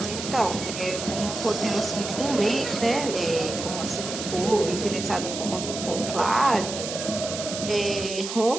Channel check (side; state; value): right; noise; hiss, 7 dB below the sound